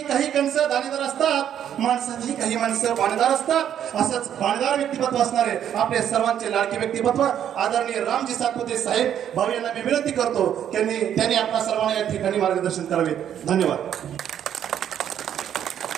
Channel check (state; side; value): quieter; left; 9.8 dB